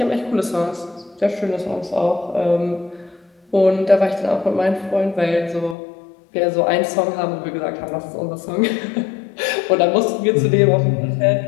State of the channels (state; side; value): drops out; right; at 5.8 s